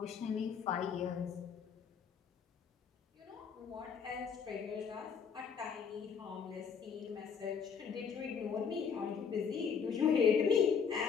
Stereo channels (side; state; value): right; quieter; 6.6 dB